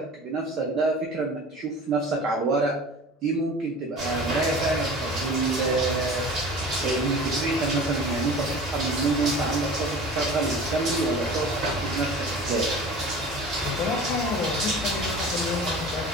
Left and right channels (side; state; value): both; normal; correlation 0.39